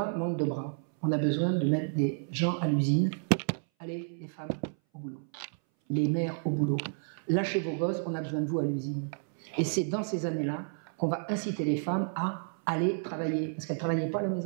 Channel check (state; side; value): silent; left; 57 dB below the other